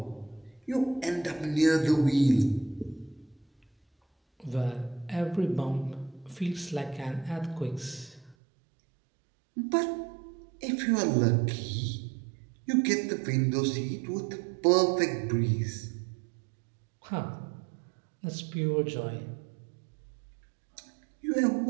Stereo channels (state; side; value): drops out; left; at 8.3 s